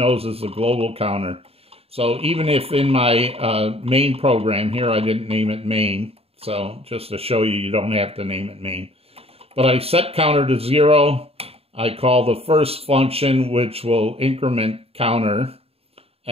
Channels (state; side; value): late; left; 0.29 ms